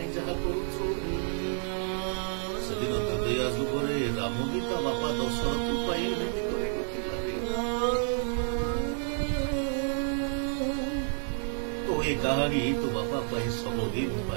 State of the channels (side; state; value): left; silent; 58 dB below the other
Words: जहा करुछु सेदिन हृदया जुगरे राम गीता बापा दशरथ पाई तो ये कहानी तो बापा पाई सबदिन